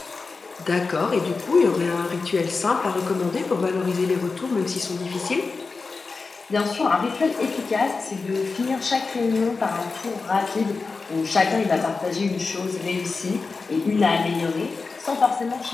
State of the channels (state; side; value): quieter; right; 4.3 dB